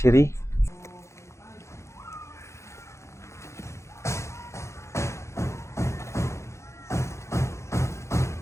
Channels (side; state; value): right; late; 0.14 ms